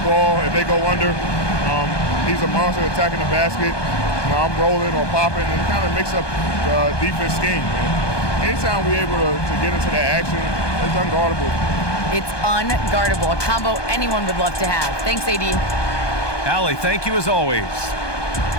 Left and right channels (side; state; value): right; late; 1.2 ms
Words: ball if they go under. He's a monster attacking the basket. You know, I'm rolling or popping and kind of mix up the defense scheme. And anytime we're able to get into that action, it's unguardable. It's unguardable, a combo anyone would love to have. Thanks, AD. Allie, thank you as always.